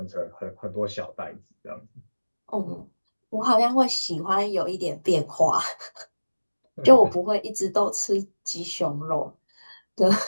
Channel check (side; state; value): both; inverted; correlation -1.00